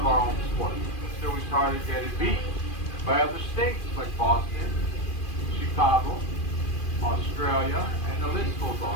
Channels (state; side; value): late; right; 2.4 ms